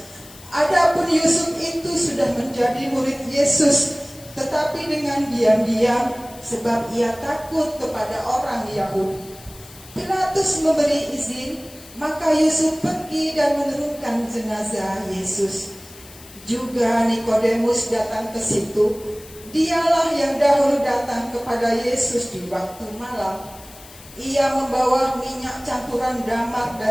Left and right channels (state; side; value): noise; left; hiss, 20 dB below the sound